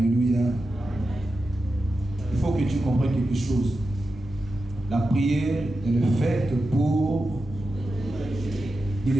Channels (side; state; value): both; normal; correlation 0.91